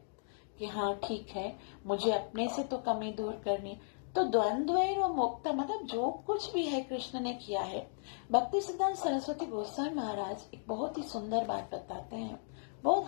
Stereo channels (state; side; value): silent; right; digital silence